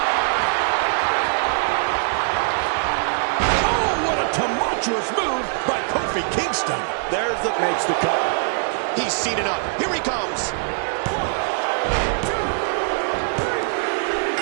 virtuous move by Kofi Kingston. There's the Makes the cover. He's seen enough. Here he comes.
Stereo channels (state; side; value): silent; left; digital silence